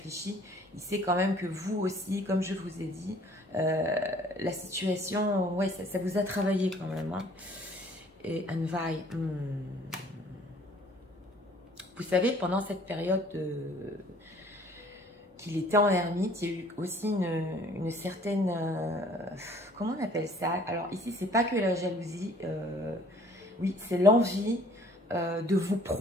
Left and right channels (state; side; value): normal; both; correlation 0.55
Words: il sait quand même que vous aussi, comme je vous ai dit, la situation, ouais, ça vous a travaillé quand même. Hein. Et Anvai, vous savez, pendant cette période qu'il était en ermite, il y a eu aussi une certaine... comment on appelle ça? Alors ici, c'est pas que la jalousie, oui, c'est l'envie de vous